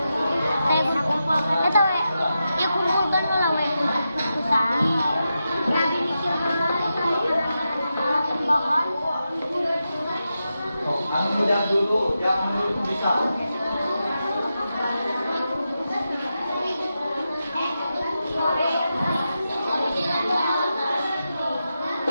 yang muda dulu, yang menurut bisa.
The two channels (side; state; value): both; inverted; correlation -0.89